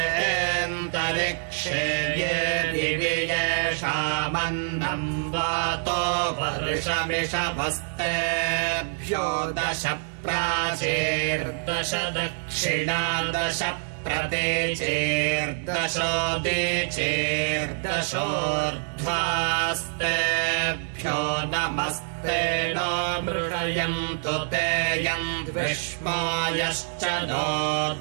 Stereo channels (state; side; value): silent; left; 61 dB below the other